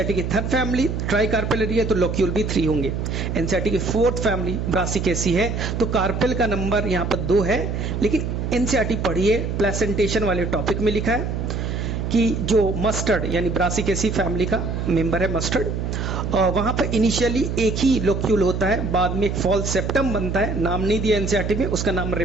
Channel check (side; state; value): right; noise; hum, 2 dB below the sound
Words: की थर्ड फैमिली ट्राई कार्पेलरी है तो लोक्यूल भी 3 होंगे। एनसीईआरटी की फोर्थ फैमिली ब्रासिकेसी है तो कार्पेल का नंबर यहाँ पर 2 है, लेकिन एनसीईआरटी पढ़िए प्लेसेंटेशन वाले टॉपिक में लिखा है कि जो मस्टर्ड यानी ब्रासिकेसी फैमिली का मेंबर है मस्टर्ड, वहां पर इनिशियली एक ही लोक्यूल होता है, बाद में एक फॉल्स सेप्टम बनता है, नाम नहीं दिया एनसीईआरटी में, उसका नाम